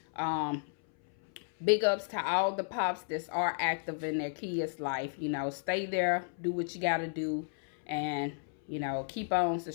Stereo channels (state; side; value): silent; right; 56 dB below the other